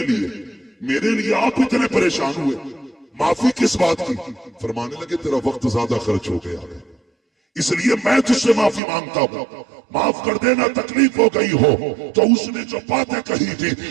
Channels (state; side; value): drops out; left; at 8.8 s